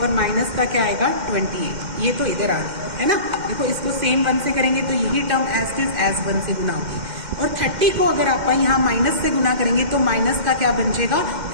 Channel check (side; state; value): left; late; 2.1 ms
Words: और माइनस का क्या आएगा 28। ये तो इधर आ गई है ना। देखो इसको सेम 1 से करेंगे तो यही टर्म एज इज एज 1 से गुना होगी। और 30 को अगर आप यहाँ माइनस से गुना करेंगे तो माइनस का क्या बन जाएगा